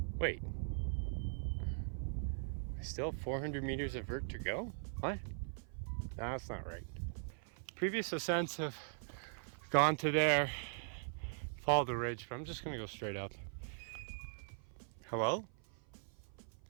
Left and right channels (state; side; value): silent; left; 51 dB below the other